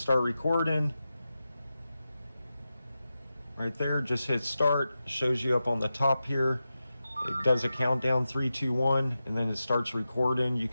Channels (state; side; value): inverted; both; correlation -0.92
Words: start recording, right there, just hit start. Shows you up on the top here. It does a countdown, 3, 2, 1, and then it starts recording. You